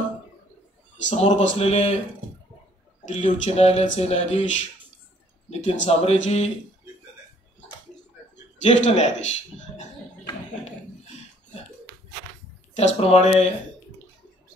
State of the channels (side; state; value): both; normal; correlation 0.61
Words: समोर बसलेले दिल्ली उच्च न्यायालयाचे न्यायाधीश नितीन सांबरेजी, ज्येष्ठ न्यायाधीश, त्याचप्रमाणे